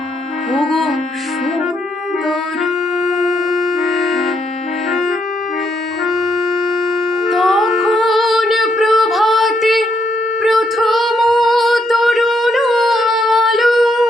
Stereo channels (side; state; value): both; normal; correlation 0.76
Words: ওগো সুন্দর। তখন প্রভাতে প্রথম তরুণ আলো